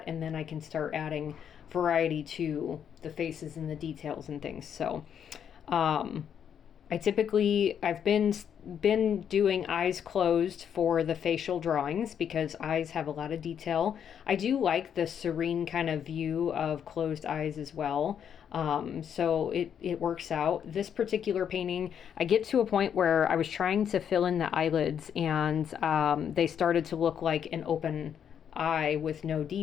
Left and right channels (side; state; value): right; quieter; 8.4 dB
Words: and then I can start adding variety to the faces and the details and things. So I've been doing eyes closed for the facial drawings because eyes have a lot of detail. I do like the serene kind of view of closed eyes as well. So it works out. This particular painting, I get to a point where I was trying to fill in the eyelids, and they started to look like an open eye with no